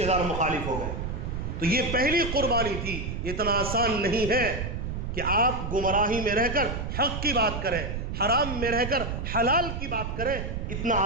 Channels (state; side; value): noise; right; rumble, 4 dB below the sound